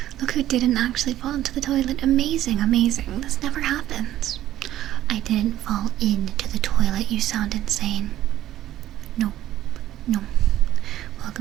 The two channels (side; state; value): left; quieter; 13.2 dB